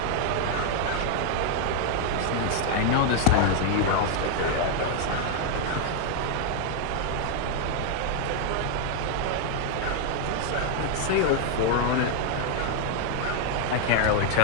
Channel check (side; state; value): both; different; correlation 0.00